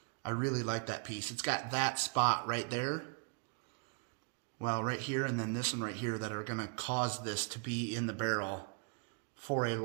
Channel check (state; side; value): quieter; left; 36.9 dB